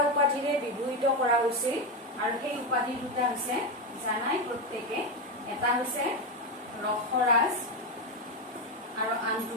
উপাধিৰে বিভূষিত কৰা হৈছিল আৰু সেই উপাধি দুটা হৈছে জানাই প্ৰত্যেকে এটা হৈছে ৰসৰাজ আৰু আনটো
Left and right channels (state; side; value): normal; both; correlation 0.11